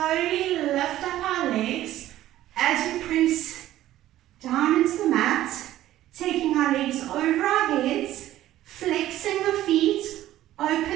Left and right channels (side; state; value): left; quieter; 13.9 dB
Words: lift up our legs as we press down into the mat, taking our legs over our heads, flexing the feet,